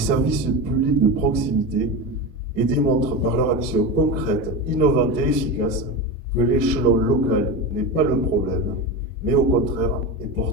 publics de proximité et démontrent par leur action concrète, innovante et efficace que l'échelon local n'est pas le problème, mais au contraire est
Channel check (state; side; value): normal; both; correlation 0.22